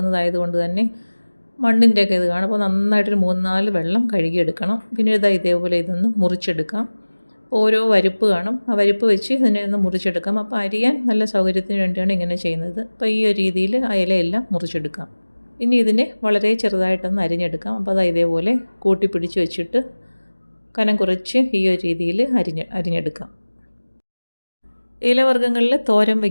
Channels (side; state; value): both; inverted; correlation -1.00